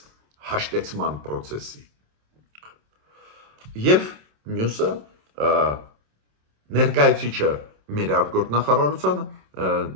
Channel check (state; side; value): late; left; 27 ms